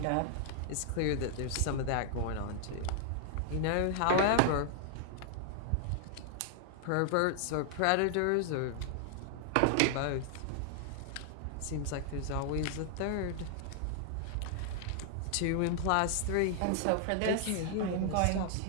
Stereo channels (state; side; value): different; both; correlation 0.00